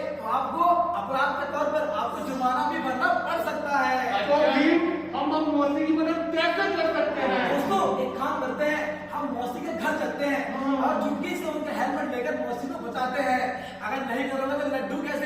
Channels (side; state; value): both; identical; correlation 1.00